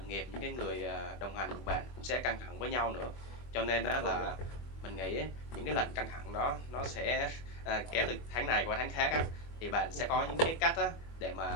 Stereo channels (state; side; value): late; right; 25 ms